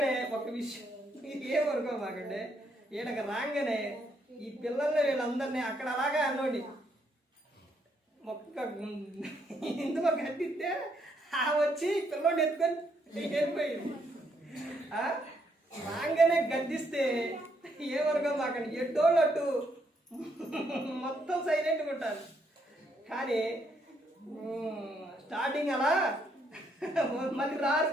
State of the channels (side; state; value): both; normal; correlation 0.74